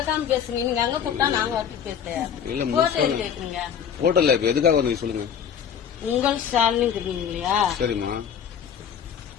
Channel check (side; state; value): right; quieter; 8.1 dB